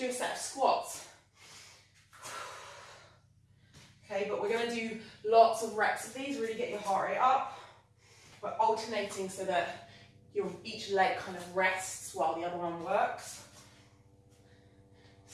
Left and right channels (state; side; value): identical; both; correlation 1.00